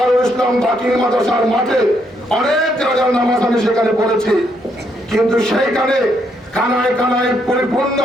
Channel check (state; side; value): normal; both; correlation 0.75